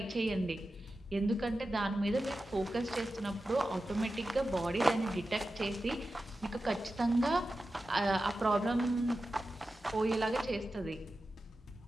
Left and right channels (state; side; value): normal; both; correlation 0.93